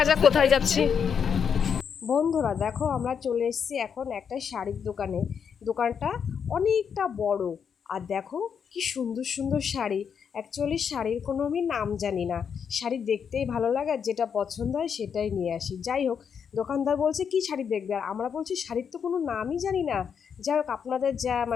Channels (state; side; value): quieter; right; 7.1 dB